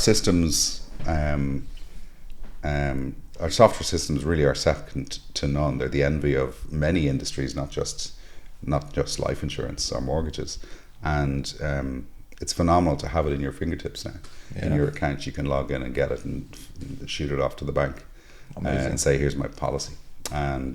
our software systems really are second to none. They're the envy of many industries, not just life insurance or mortgages. And it's phenomenal to have it in your fingertips now. Yeah. In your account, you can log in and get it and shoot it off to the bank and say, "Here's my policy."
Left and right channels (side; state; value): both; identical; correlation 1.00